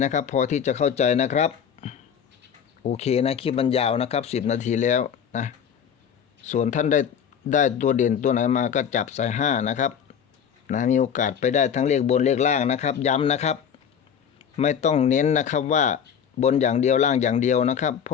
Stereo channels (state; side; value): quieter; right; 7.9 dB